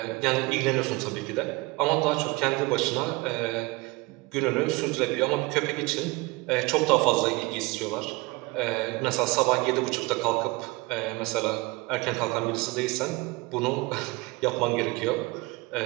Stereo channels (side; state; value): left; quieter; 23.9 dB